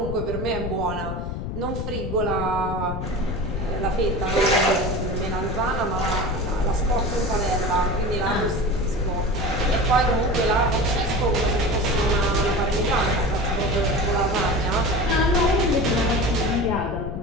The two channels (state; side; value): noise; left; rumble, 5 dB below the sound